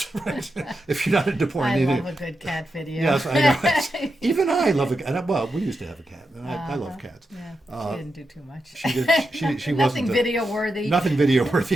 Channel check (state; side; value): normal; both; correlation 0.87